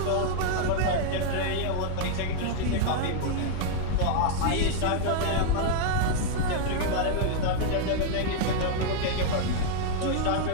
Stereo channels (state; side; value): different; both; correlation 0.00